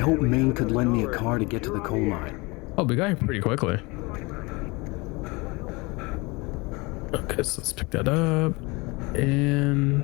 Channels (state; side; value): quieter; right; 25.6 dB